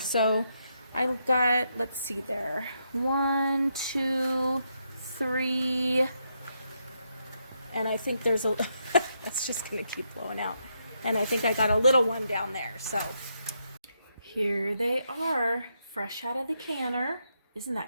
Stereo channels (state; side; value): inverted; both; correlation -0.80